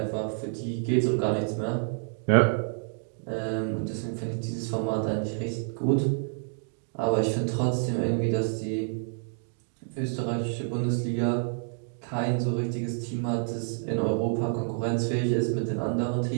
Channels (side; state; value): left; silent; 59 dB below the other